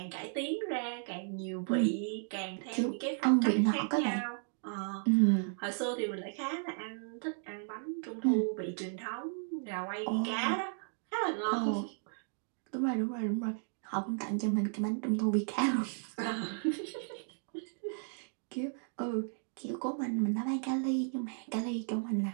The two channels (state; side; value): silent; left; 55 dB below the other